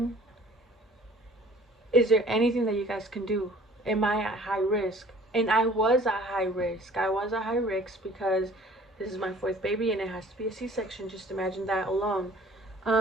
is there anything that you guys can do? Am I at high risk? And I was at high risk. I was at high risk because this is my fourth baby and it has to be a C-section. Just imagine that alone.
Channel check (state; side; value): normal; both; correlation 0.51